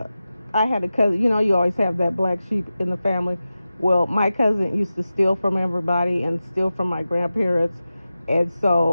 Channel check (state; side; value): inverted; both; correlation -0.94